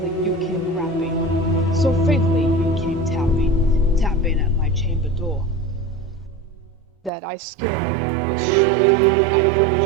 you came rapping, so faintly you came tapping at my chamber door, that I scared was sure I heard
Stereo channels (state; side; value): drops out; left; at 7.1 s